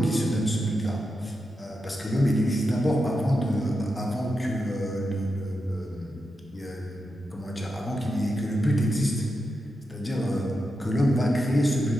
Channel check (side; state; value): both; normal; correlation 0.87